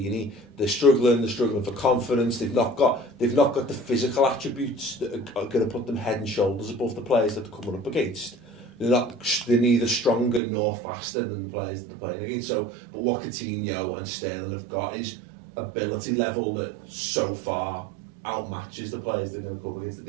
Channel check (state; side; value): drops out; left; at 10.4 s